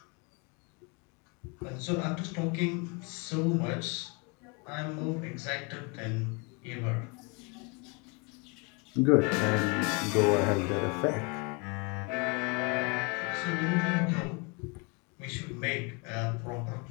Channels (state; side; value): quieter; right; 30.9 dB